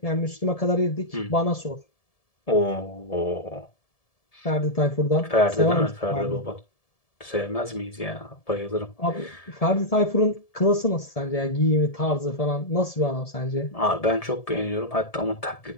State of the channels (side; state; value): right; late; 1.7 ms